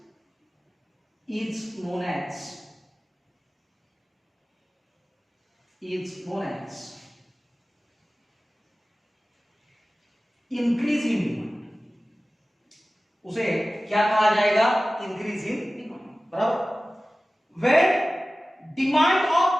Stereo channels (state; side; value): normal; both; correlation 0.97